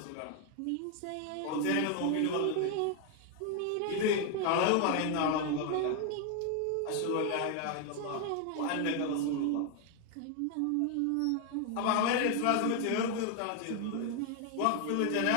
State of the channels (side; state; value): both; different; correlation 0.00